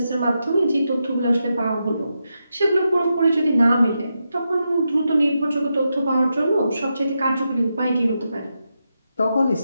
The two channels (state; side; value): inverted; both; correlation -0.86